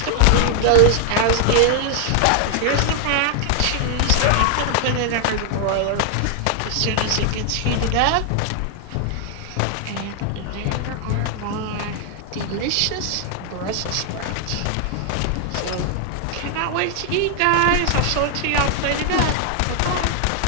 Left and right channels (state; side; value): different; both; correlation 0.00